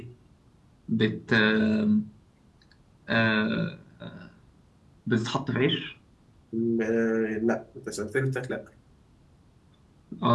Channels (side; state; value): both; identical; correlation 1.00